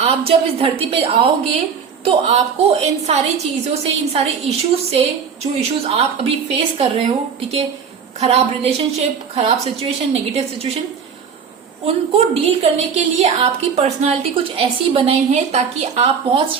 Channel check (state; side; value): quieter; left; 6.5 dB